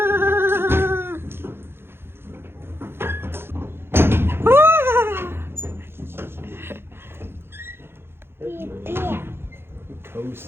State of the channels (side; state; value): left; late; 0.11 ms